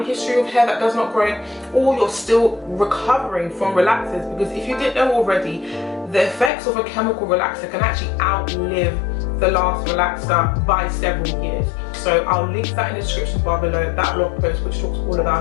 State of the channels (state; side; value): drops out; right; at 6.5 s